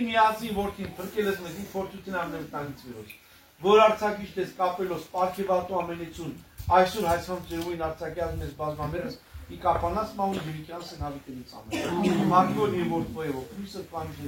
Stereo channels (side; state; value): both; identical; correlation 1.00